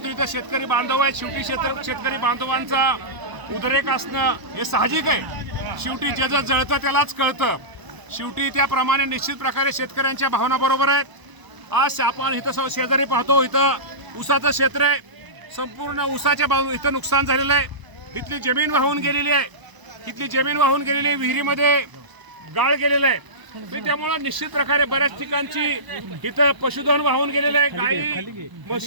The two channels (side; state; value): left; late; 1.0 ms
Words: इथं शेतकरी बांधव आहेत, शेवटी शेतकरी बांधवांचा उद्रेक असणं हे साहजिक आहे। शेवटी जे जे जळतं त्यालाच कळतं। शेवटी त्याप्रमाणे निश्चित प्रकारे शेतकऱ्यांच्या भावना बरोबर आहेत। आज आपण इथं शेजारी पाहतो, इथं ऊसाचं क्षेत्र आहे, संपूर्ण ऊसाच्या इथं नुकसान झालेलं आहे। इथली जमीन वाहून गेलेली आहे, विहिरीमध्ये गाळ गेलेलं आहे। त्यामुळे निश्चित प्रकारे बऱ्याच ठिकाणची इथं पशुधन वाहून गेलेलं आहे, गाई